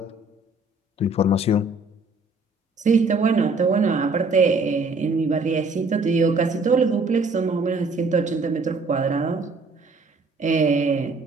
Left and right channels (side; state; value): left; quieter; 3.2 dB